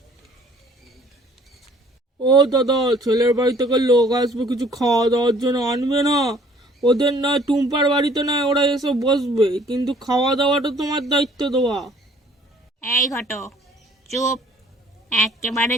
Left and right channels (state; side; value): normal; both; correlation 0.57